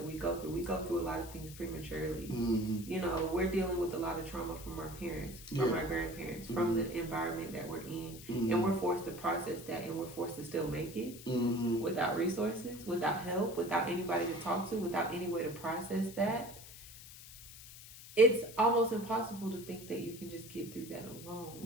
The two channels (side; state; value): left; noise; hiss, 15 dB below the sound